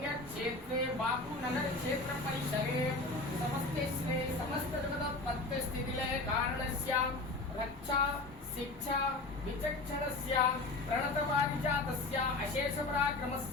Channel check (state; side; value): quieter; right; 3.1 dB